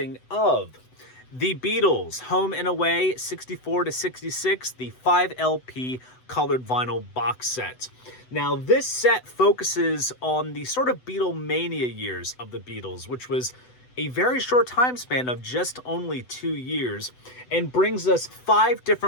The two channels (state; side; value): late; right; 8.0 ms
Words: of the Beatles Home and Away 64 to 66, the 5 LP colored vinyl box set. Now, this set focuses on the sort of Beatlemania years of the Beatles, which was a very short time span of just only 2 years, and brings us 5